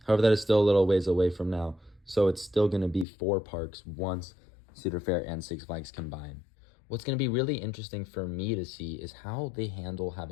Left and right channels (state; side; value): drops out; right; at 3.1 s